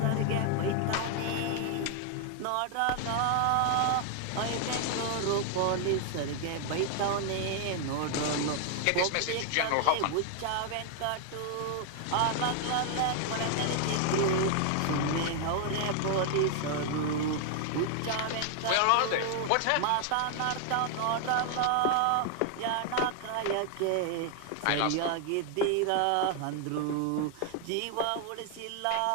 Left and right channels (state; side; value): different; both; correlation 0.00